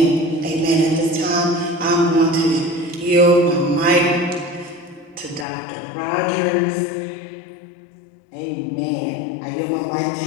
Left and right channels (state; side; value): drops out; right; at 5.5 s